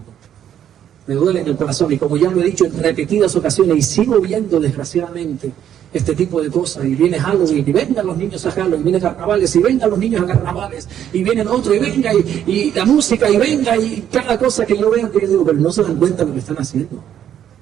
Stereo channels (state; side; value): quieter; left; 10.0 dB